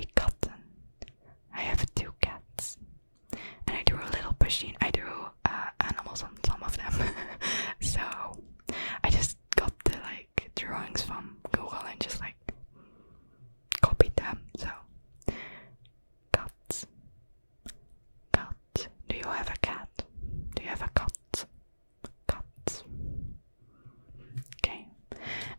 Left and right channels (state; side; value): inverted; both; correlation -1.00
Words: katten. I have 2 cats. And I drew a little machine. I drew animals on some of them. So I just got the drawings from Google and just copied them. So cats. Cat. Do you have a cat? Do you have a cat? Cat. Okay.